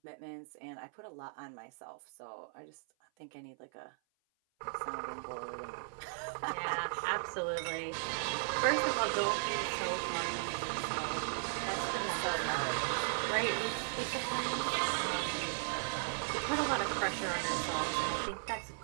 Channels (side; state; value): left; silent; 53 dB below the other